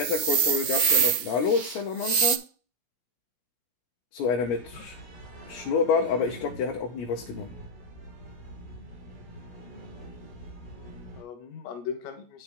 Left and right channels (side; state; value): right; late; 16 ms